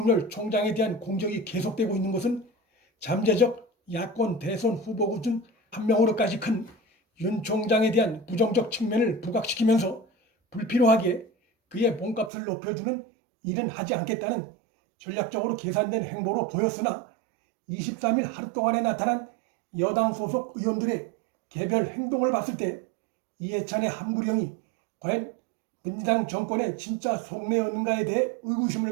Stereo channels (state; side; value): drops out; left; at 12.3 s